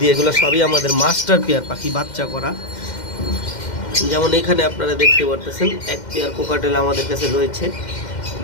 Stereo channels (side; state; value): right; late; 2.1 ms